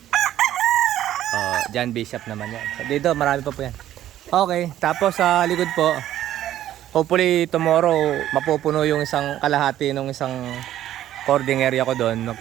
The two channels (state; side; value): quieter; left; 12.5 dB